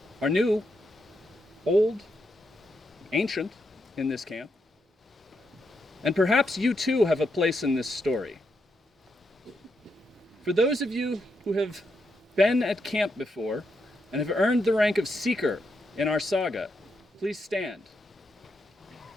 are new, old, ancient in this camp, and perhaps you too have a place in this story. For those of you who have been at camp before and have earned the rank of Seeker in our saga, please stand.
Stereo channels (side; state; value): both; normal; correlation 0.82